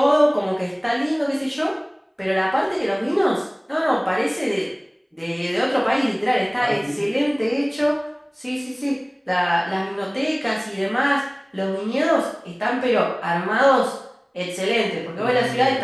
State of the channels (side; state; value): both; identical; correlation 1.00